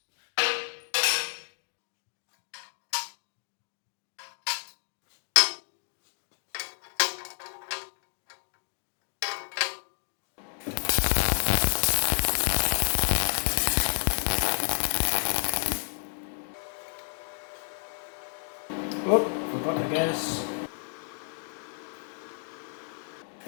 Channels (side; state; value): right; silent; 58 dB below the other